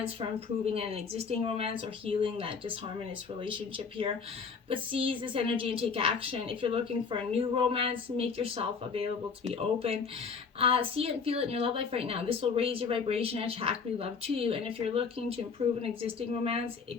for improving an existing romance, or healing that disharmonious relationship here. But seize this energy and take action. If you're looking for a new romance, make yourself available to be open. See it and feel it in your love life right now. This will raise your vibration and attract new love to you. And if you're looking to improve an existing romance,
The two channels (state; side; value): quieter; right; 5.5 dB